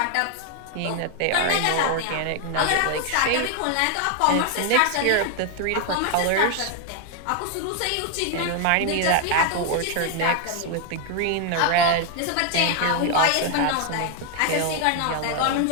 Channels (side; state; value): both; different; correlation 0.00